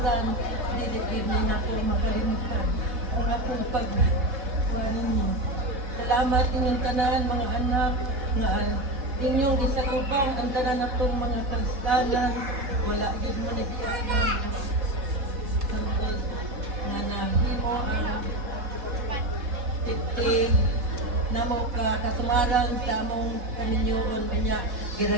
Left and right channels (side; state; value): left; late; 3.7 ms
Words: dili gid ni nako makalimutan ang akong pagkuhan ninyo. Salamat inyong tanan mga anak nga inyong gisagubang ang tanan natong mga kristanan. Wala gid man idiya nga nahimo ang 50 namo katungaran sa among kaminyoon niya